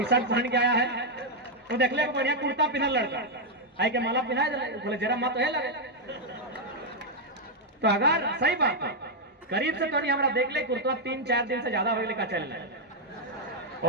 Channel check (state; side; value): normal; both; correlation -0.02